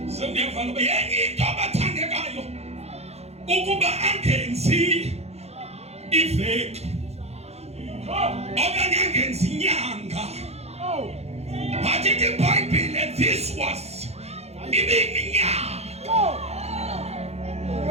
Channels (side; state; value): left; late; 0.31 ms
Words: Sengiyeva lo yenye into abathandekayo ukuba angenzi iveki okanye angenzi inyanga. But in the Bible this was iminyaka